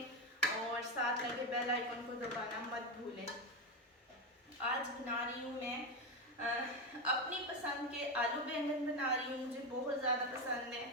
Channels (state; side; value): normal; both; correlation 0.13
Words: और साथ लगे बेल आइकन को दबाना मत भूलें। आज बना रही हूँ मैं अपनी पसंद के आलू बैंगन बना रही हूँ। मुझे बहुत ज़्यादा पसंद है,